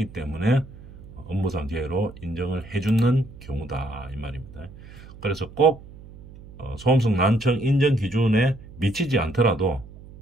때문에 업무상 재해로 인정을 해주는 경우다 이 말입니다. 그래서 꼭 소음성 난청 인정 기준에 미치지 않더라도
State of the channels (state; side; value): noise; right; hum, 18 dB below the sound